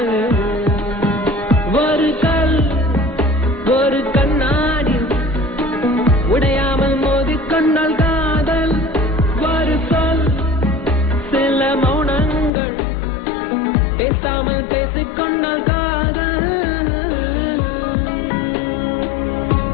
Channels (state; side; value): drops out; right; at 12.5 s